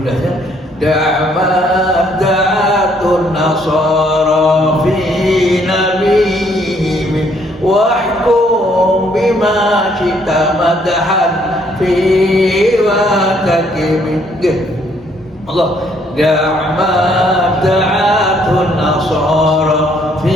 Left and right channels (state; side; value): normal; both; correlation 0.67